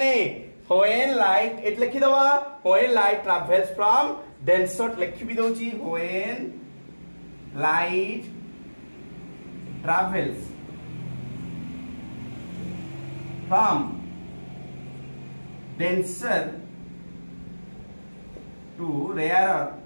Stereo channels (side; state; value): both; inverted; correlation -1.00